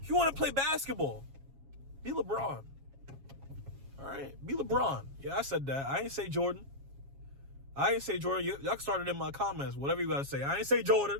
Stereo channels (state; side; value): late; left; 7.3 ms